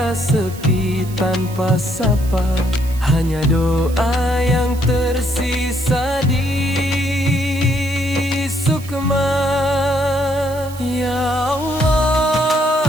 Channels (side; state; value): right; noise; hiss, 18 dB below the sound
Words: sepi tanpa sapa. Hanya doa yang tersisa di sukma. Ya